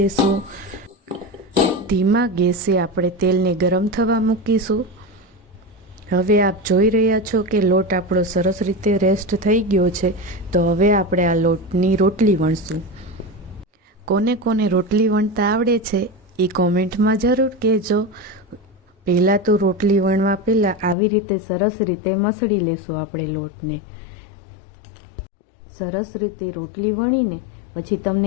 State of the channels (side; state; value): right; drops out; at 21.0 s